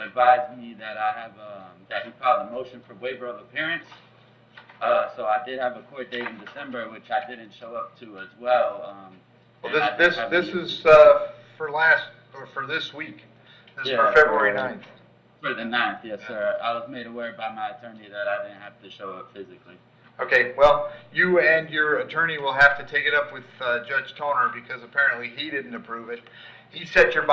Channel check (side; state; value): both; identical; correlation 1.00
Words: me that that he filed a motion for waiver of appearance. So I did have a court date in December, which I didn't show up to as well. Well, and I didn't have this any- is for this week. This is for Yeah, February for- 9th. For the 9th, yes, sir. I was made aware by my attorney that I didn't have to show up physically. Okay, well, you and your attorney will have to take it up with Judge Toner because apparently he didn't approve it. He set your